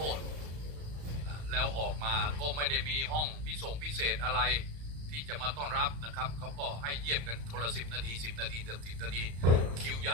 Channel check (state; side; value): late; left; 35 ms